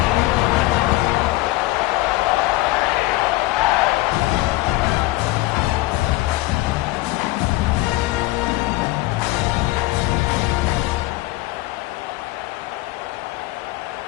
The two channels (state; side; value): quieter; right; 18.8 dB